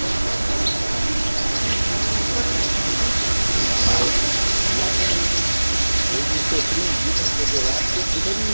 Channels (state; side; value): inverted; both; correlation -1.00